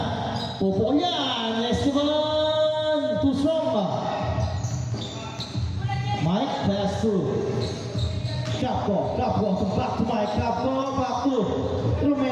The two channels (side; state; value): both; identical; correlation 1.00